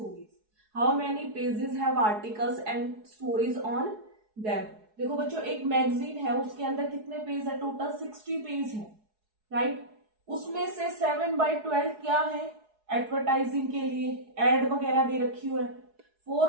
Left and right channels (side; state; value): left; late; 4.7 ms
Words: How many pages have articles and stories on them? देखो बच्चों, एक magazine है, उसके अंदर कितने page है, total 60 page है, right. उसमें से 7/12 क्या है, एडवर्टाइजिंग के लिए एड वगैरह दे रखी हुई है।